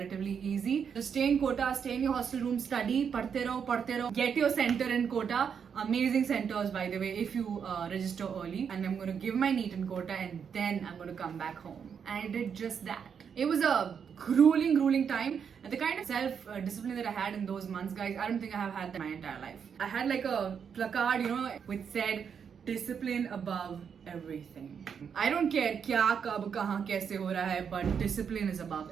easy. Just stay in Kota, stay in your hostel room, study, padhte raho. Get your center in Kota. Amazing centers, by the way, if you register early. And I'm going to give my NEET in Kota and then I'm going to come back home. And I did just that. It was a grueling time, and the kind of self-discipline that I had in those months, guys, I don't think I have had that my entire life. I had like a placard, which said, discipline above everything. I don't care kya, kab, kahan, kaise ho raha hai, but discipline is above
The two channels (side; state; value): left; quieter; 7.1 dB